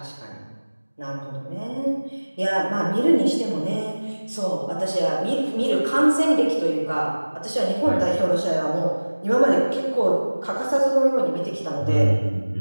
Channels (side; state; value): both; inverted; correlation -1.00